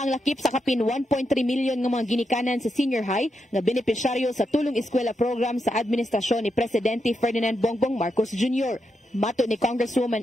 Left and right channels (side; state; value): both; normal; correlation 0.84